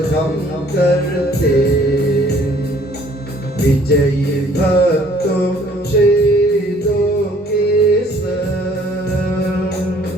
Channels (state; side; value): normal; both; correlation 0.58